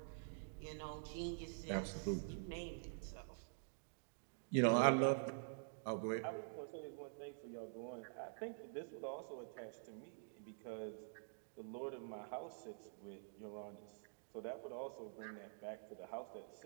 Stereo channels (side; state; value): left; silent; digital silence